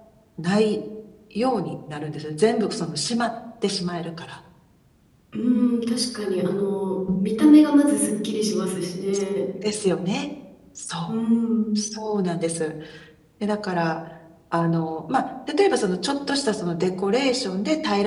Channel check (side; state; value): both; identical; correlation 1.00